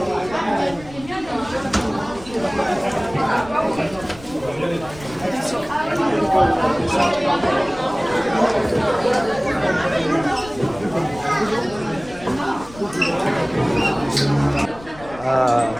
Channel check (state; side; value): noise; left; rumble, 18 dB below the sound